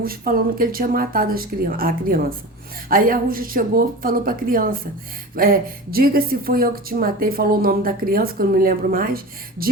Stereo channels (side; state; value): both; normal; correlation 0.32